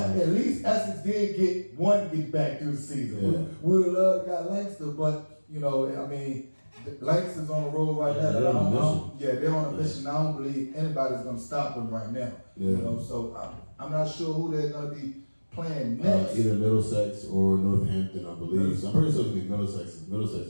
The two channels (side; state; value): both; inverted; correlation -1.00